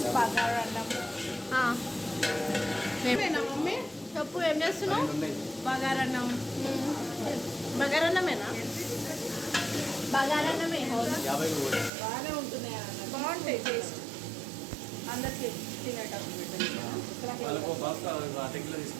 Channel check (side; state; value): left; drops out; at 11.9 s